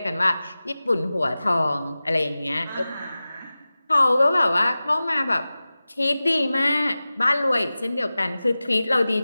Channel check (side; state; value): both; inverted; correlation -0.96